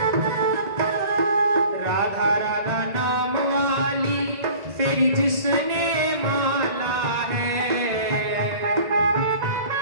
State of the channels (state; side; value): late; left; 1.8 ms